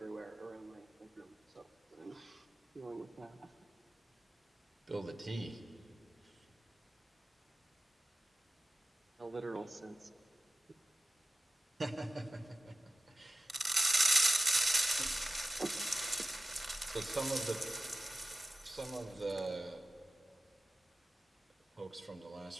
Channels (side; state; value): both; normal; correlation 0.95